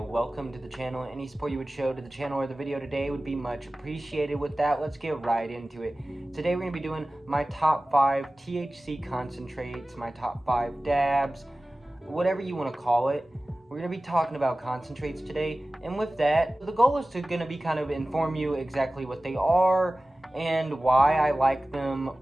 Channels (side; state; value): both; normal; correlation 0.97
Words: to the channel. Any support you would show to the channel or the video today would be much appreciated. With that, let's get right into it. Today we're going to be doing my top 5 THC concentrates, my top 5 dabs, whatever you want to call it. We're going to be talking about concentrates today, and with that, the goal is to going to be kind of inform you exactly what they are and why I like them